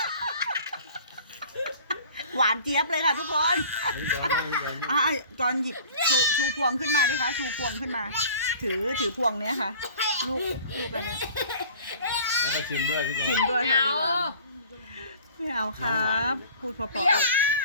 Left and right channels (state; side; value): inverted; both; correlation -0.46